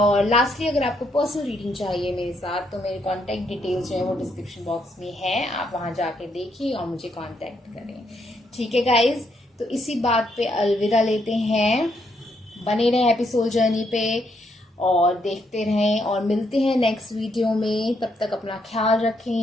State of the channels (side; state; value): both; normal; correlation 0.75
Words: लास्टली, अगर आपको पर्सनल रीडिंग चाहिए मेरे साथ, तो मेरे कॉन्टैक्ट डिटेल्स जो है वो डिस्क्रिप्शन बॉक्स में है, आप वहां जाके देखिए और मुझे कॉन्टैक्ट करें। ठीक है गाइज, तो इसी बात पे अलविदा लेते हैं। बने रहें एपिसोड जर्नी पे और देखते रहें, और मिलते हैं नेक्स्ट वीडियो में। तब तक अपना ख्याल